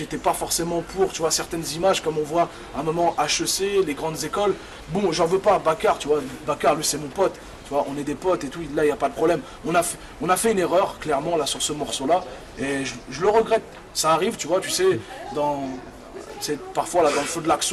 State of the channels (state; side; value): identical; both; correlation 1.00